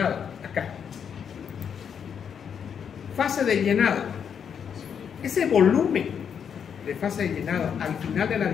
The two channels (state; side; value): quieter; right; 7.6 dB